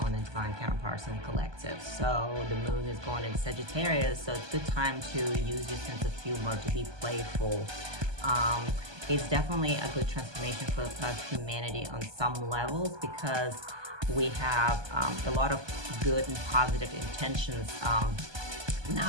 on the Divine Counterparts and Collective. So the moon is going into Sagittarius, so it's a good time to use your sense of humor to be playful. It's definitely a good transformation for humanity on some levels, because we have a lot of good and positive intentions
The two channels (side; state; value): left; late; 1.2 ms